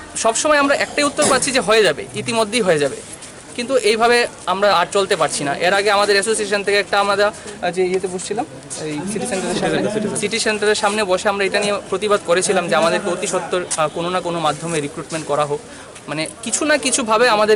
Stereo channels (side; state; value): both; identical; correlation 1.00